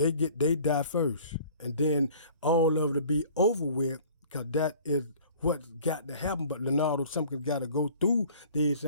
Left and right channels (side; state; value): both; inverted; correlation -0.49